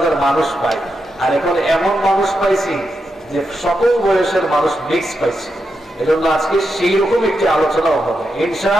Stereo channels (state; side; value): normal; both; correlation 0.86